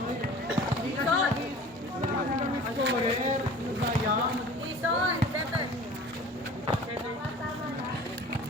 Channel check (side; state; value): both; normal; correlation 0.43